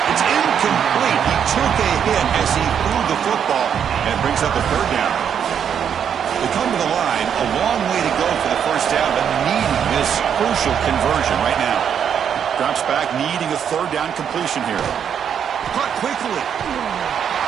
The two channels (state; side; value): quieter; left; 8.2 dB